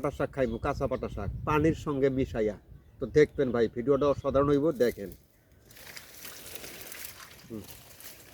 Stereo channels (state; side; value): identical; both; correlation 1.00